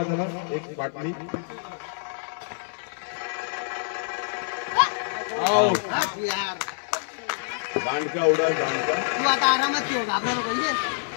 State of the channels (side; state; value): right; silent; 61 dB below the other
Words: जरा एक बाटली यार दांडका उडा दांडका तू आता आरामात ठेव घाबरा नको